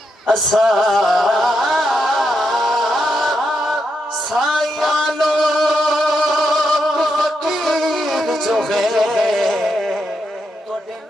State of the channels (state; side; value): normal; both; correlation 0.82